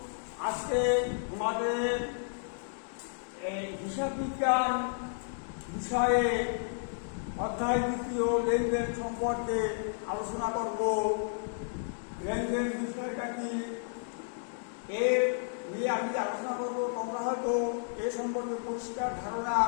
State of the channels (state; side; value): silent; right; digital silence